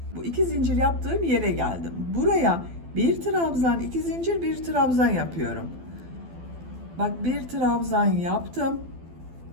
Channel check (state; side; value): late; left; 12 ms